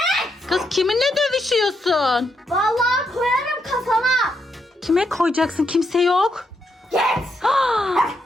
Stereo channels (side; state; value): both; normal; correlation 0.80